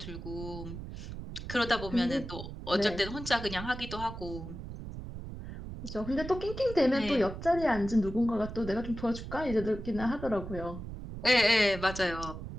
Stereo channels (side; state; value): right; noise; rumble, 9 dB below the sound